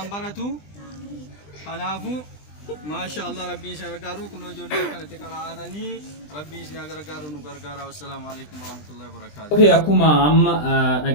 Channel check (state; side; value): late; right; 20 ms